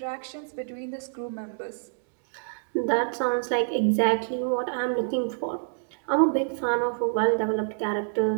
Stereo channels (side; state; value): left; silent; digital silence